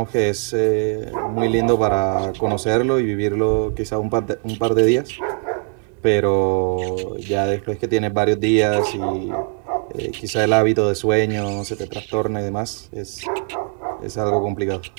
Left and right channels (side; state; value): left; quieter; 36.8 dB